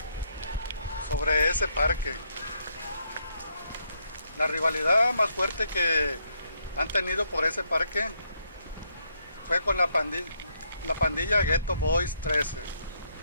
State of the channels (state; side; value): inverted; both; correlation -0.75